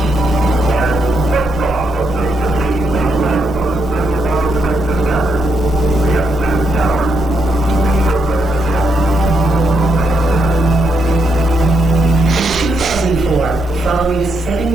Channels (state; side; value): normal; both; correlation 0.79